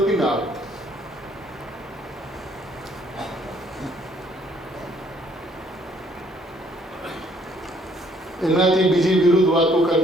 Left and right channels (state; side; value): normal; both; correlation 0.64